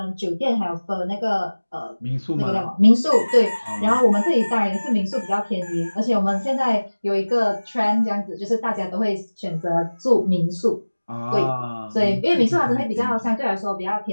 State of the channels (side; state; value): both; inverted; correlation -1.00